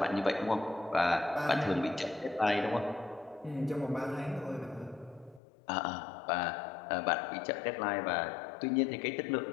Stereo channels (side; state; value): right; drops out; at 5.4 s